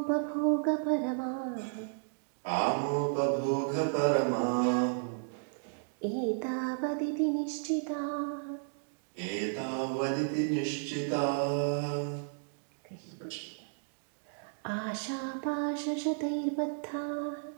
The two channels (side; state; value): left; silent; digital silence